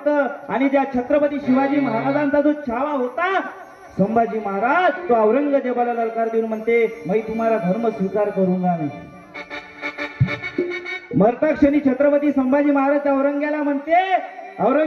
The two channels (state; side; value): identical; both; correlation 1.00